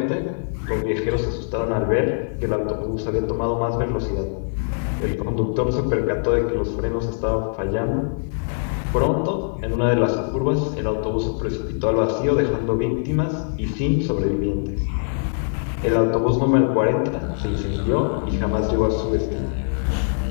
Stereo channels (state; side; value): silent; right; 64 dB below the other